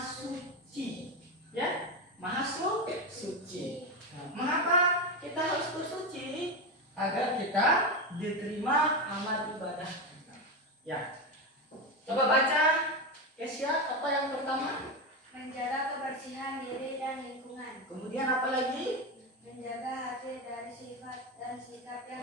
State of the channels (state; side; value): normal; both; correlation 0.14